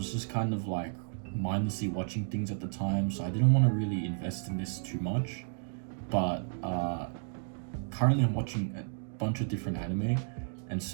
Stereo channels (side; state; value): left; silent; digital silence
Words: just kind of like mindlessly watching things at the time, so I didn't want to really invest in this too much. But currently I'm watching a bunch of different anime, and